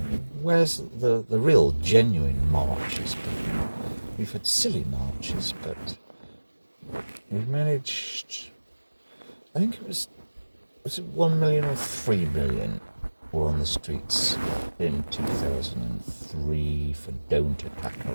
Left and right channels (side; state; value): both; inverted; correlation -1.00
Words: Where's the real, genuine marches? We've had silly marches, but we've managed, I think was it 1 million or 3 million were on the streets in 2003 for Don't Attack